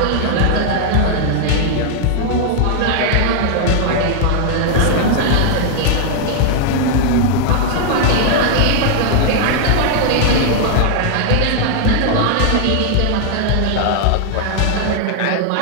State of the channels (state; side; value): different; both; correlation 0.00